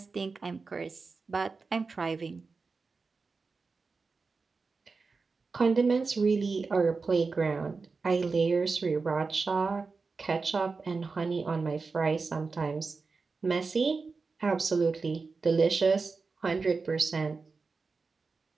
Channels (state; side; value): quieter; left; 4.4 dB